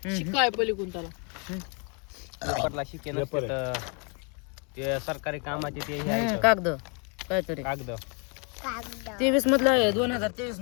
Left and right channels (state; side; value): quieter; right; 35.8 dB